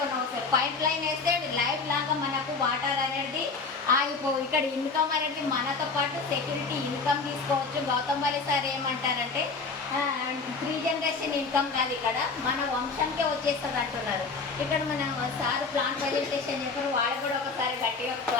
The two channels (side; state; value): right; quieter; 4.4 dB